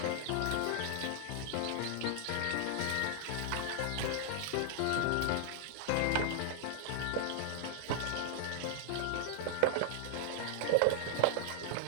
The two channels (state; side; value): different; both; correlation 0.00